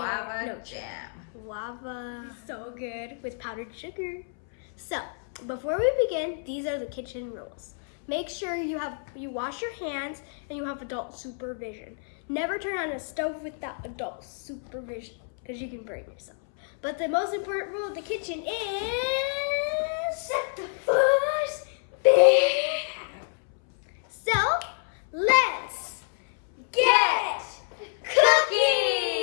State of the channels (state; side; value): silent; right; 59 dB below the other